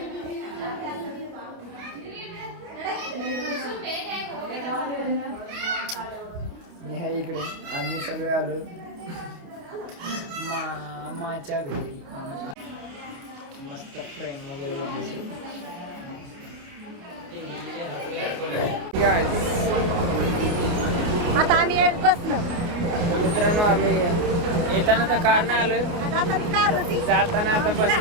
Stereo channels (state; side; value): late; left; 29 ms